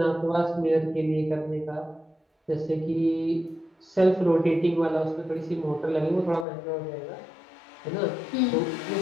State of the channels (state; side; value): drops out; right; at 6.5 s